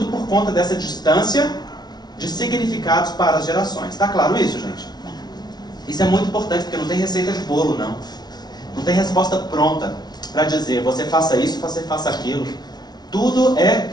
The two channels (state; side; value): late; right; 0.19 ms